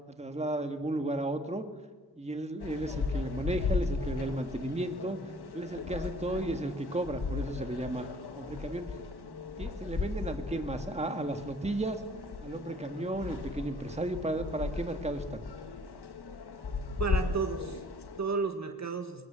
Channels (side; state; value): both; normal; correlation 0.56